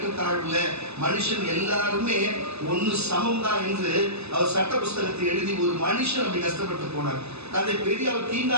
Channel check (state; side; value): late; left; 0.79 ms